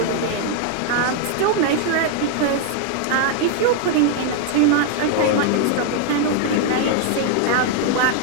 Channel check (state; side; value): different; both; correlation 0.00